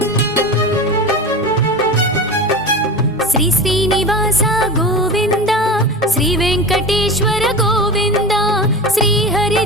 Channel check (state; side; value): normal; both; correlation 0.28